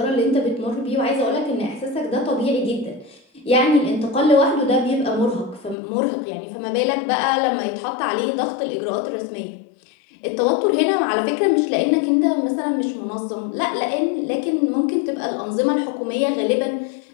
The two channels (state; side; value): drops out; right; at 5.8 s